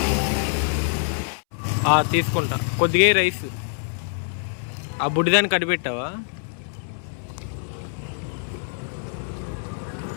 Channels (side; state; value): right; silent; 62 dB below the other